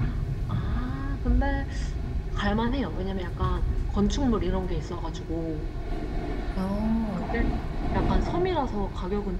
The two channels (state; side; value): identical; both; correlation 1.00